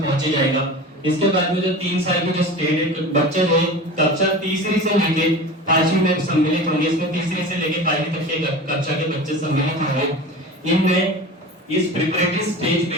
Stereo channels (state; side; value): normal; both; correlation 0.33